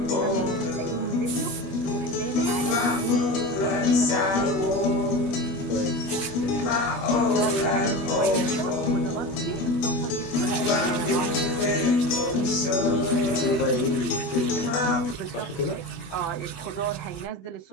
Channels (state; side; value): late; right; 21 ms